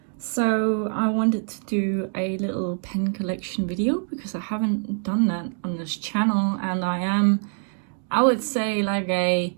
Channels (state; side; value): silent; left; 62 dB below the other